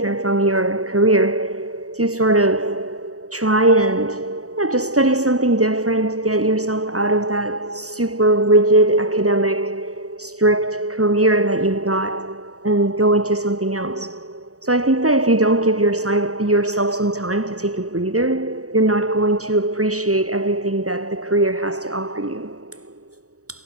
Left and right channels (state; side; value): late; left; 0.66 ms